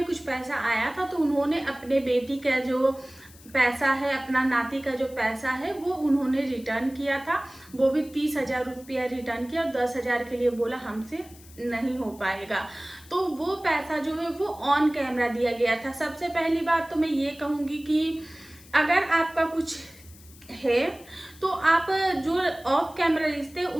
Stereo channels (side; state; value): left; noise; hiss, 22 dB below the sound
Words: कुछ पैसा आया था, तो उन्होंने अपने बेटी का जो पैसा है, अपना नाती का जो पैसा है वो उन्होंने रिटर्न किया था। वो भी 30,000 रुपया रिटर्न किया और 10,000 के लिए बोला हमसे नहीं हो पाएगा। तो वो पैसा जो है वो ऑन कैमरा दिया गया था। सबसे पहली बात तो मैं ये कहूँगी कि अगर आपका कुछ है तो आप जो ऑफ कैमरा रिश्ते